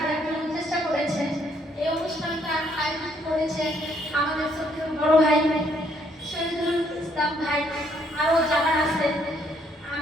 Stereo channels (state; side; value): normal; both; correlation 0.68